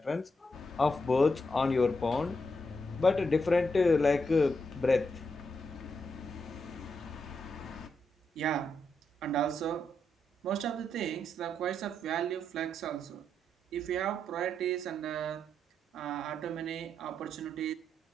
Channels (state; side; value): normal; both; correlation 0.81